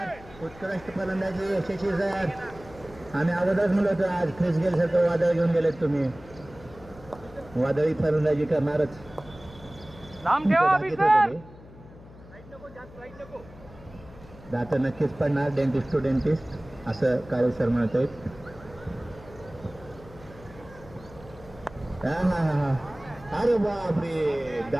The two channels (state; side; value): noise; left; hum, 20 dB below the sound